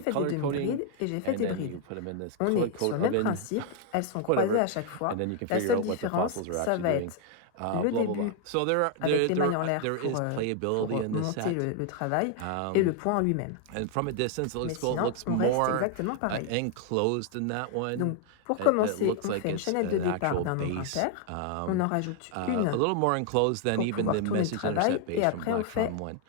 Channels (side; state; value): both; different; correlation 0.00